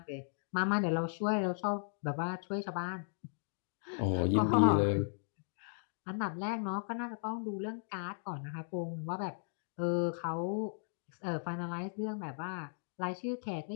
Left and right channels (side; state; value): right; silent; digital silence